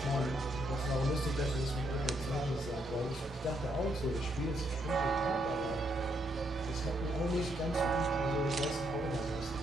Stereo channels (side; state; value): both; normal; correlation 0.75